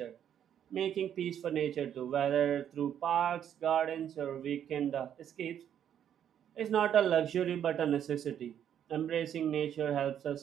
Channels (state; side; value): quieter; left; 9.5 dB